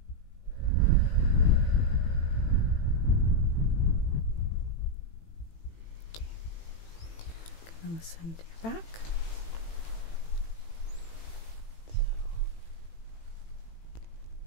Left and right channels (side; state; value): right; late; 18 ms